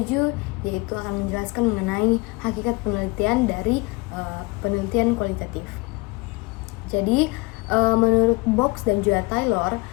yaitu akan menjelaskan mengenai hakikat penelitian dari penelitian kualitatif. Jadi, menurut Box dan juga Taylor,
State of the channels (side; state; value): right; quieter; 25.9 dB